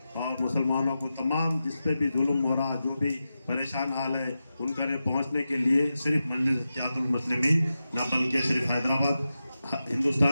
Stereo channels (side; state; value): both; inverted; correlation -0.91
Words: और मुसलमानों को, तमाम जिस पे भी जुल्म हो रहा, जो भी परेशान हाल है, उनका ने पहुँचने के लिए सिर्फ मजलिस इत्तेहादुल मुस्लिमीन ना बल्कि सिर्फ हैदराबाद,